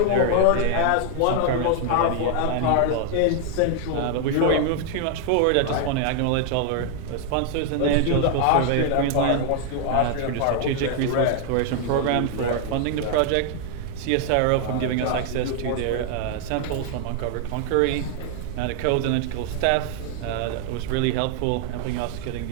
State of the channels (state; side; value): different; both; correlation 0.00